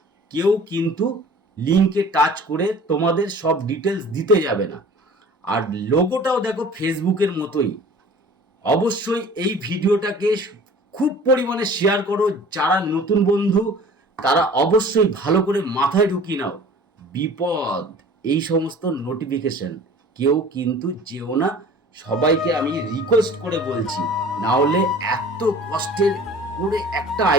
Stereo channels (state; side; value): normal; both; correlation 0.45